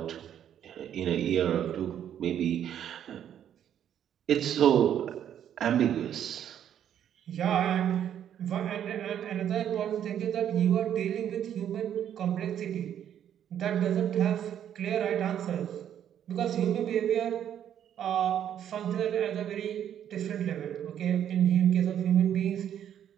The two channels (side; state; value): left; quieter; 9.9 dB